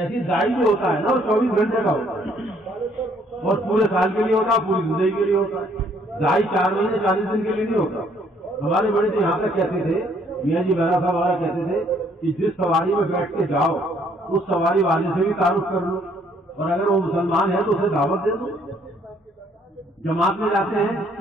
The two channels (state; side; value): normal; both; correlation 0.65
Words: دائی جو ہوتا ہے نا وہ 24 گھنٹے کا ہوتا ہے اور پورے سال کے لیے ہوتا ہے, پوری زندگی کے لیے ہوتا ہے. دائی 4 مہینے 40 دن کے لیے نہیں ہوتا. ہمارے بڑے تو یہاں تک کہتے تھے, میاں جی بہرا صاحب وغیرہ کہتے تھے کہ جس سواری میں بیٹھ کے جاؤ اس سواری والے سے بھی تعارف کر لو, اور اگر وہ مسلمان ہے تو اسے دعوت دے دو. جماعت میں جاتے ہیں